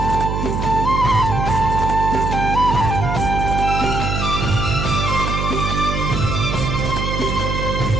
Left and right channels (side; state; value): right; noise; hum, 2 dB below the sound